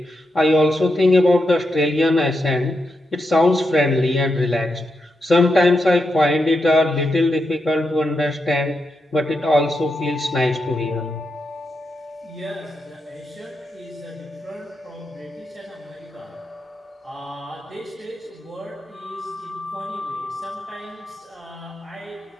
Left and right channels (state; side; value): normal; both; correlation 0.85